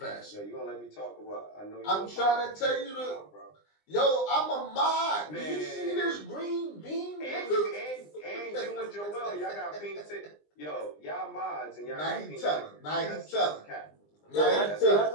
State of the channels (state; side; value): late; right; 20 ms